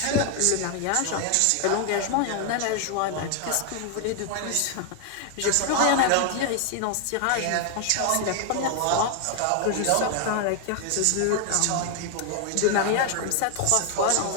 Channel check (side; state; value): both; different; correlation 0.01